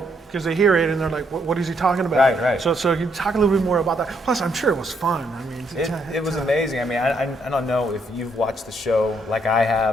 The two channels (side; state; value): both; normal; correlation 0.73